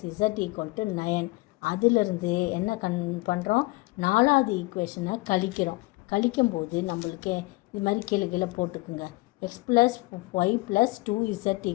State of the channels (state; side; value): quieter; right; 22.7 dB